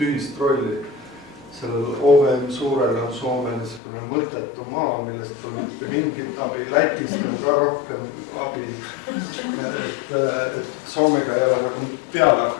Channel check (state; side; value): drops out; right; at 3.8 s